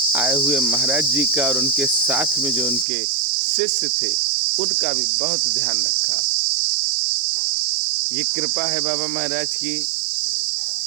आए हुए महाराज जी का, और उनके साथ में जो उनके शिष्य थे उनका भी बहुत ध्यान रखा। ये कृपा है बाबा महाराज की।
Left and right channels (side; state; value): left; drops out; at 2.9 s